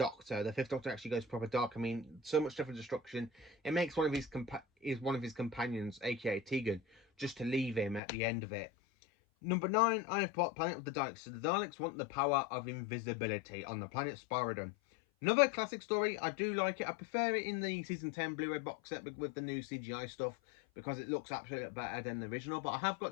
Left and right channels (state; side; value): drops out; right; at 8.0 s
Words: The 5th Doctor actually goes proper dark. I mean, so much stuff and destruction. It makes one of his companions, aka Tegan, just to leave him at the end of it. Number 9, I have put Planet of the Daleks. So the Daleks want the power of invisibility on the planet Spyridon. Another classic story. I do like it. I prefer it in the season 10 Blu-ray box set with the new CGI stuff because it looks absolutely better than the original. But I have